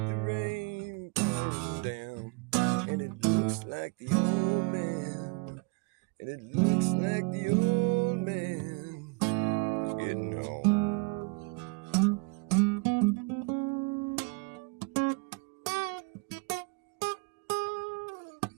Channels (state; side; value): quieter; left; 29.1 dB